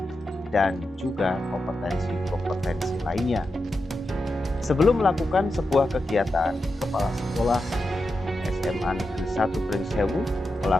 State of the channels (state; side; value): normal; both; correlation 0.89